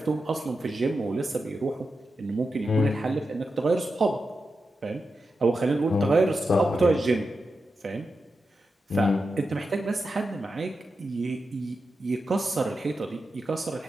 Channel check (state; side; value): normal; both; correlation 0.89